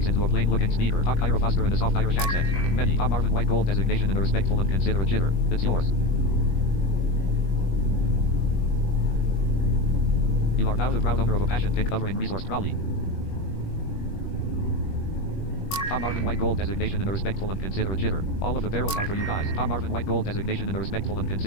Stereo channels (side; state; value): right; late; 21 ms